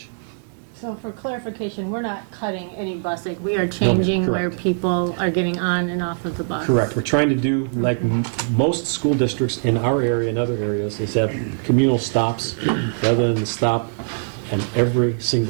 So for clarification, we're not cutting any busing. We are changing where correct. people are getting on and off of the bus. Correct. We're trying to do, like most school districts in our area and other areas, is have communal stops rather than the stop in every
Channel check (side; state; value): left; silent; digital silence